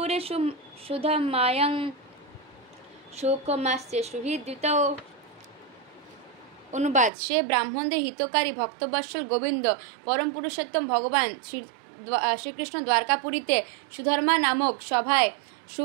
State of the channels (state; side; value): drops out; left; at 7.1 s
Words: সুধমায়ং শোকমাস্য সুহৃদ্যুতৌ। অনুবাদ সে ব্রাহ্মণদের হিতকারী ভক্তবৎসল গোবিন্দ পরম পুরুষোত্তম ভগবান শ্রীকৃষ্ণ দ্বারকাপুরীতে সুধর্মা নামক সভায়